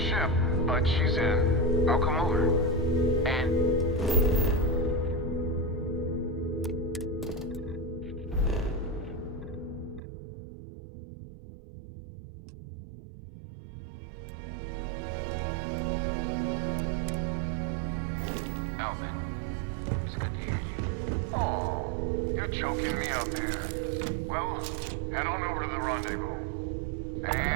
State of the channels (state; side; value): drops out; left; at 10.0 s